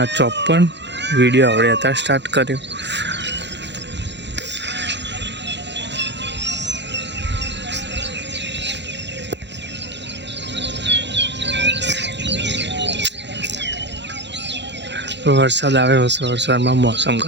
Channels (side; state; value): left; late; 0.51 ms